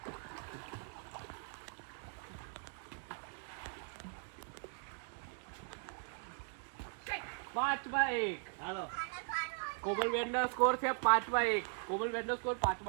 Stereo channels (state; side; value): silent; left; 51 dB below the other